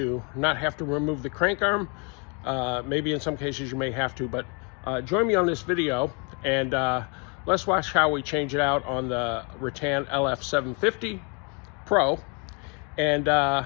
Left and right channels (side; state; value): right; quieter; 34.8 dB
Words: not have to remove the crank arm. Maybe in some cases you may have to, but join me on this video and let's watch how we change it out on the Rattan LF750 Pro. And